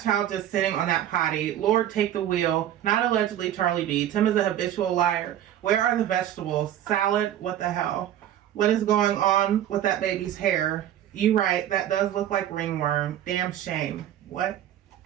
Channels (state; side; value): quieter; left; 11.5 dB